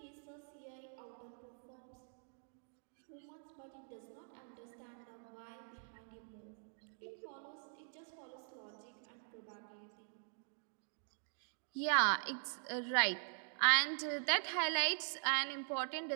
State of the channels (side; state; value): left; silent; digital silence